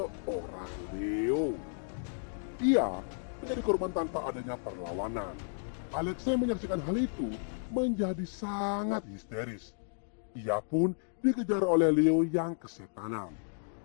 Leo. Ia menjadi korban tanpa adanya perlawanan. Alexa yang menyaksikan hal itu menjadi sangat histeris. Ia pun dikejar oleh Leo yang kesetanan.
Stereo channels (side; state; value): right; silent; digital silence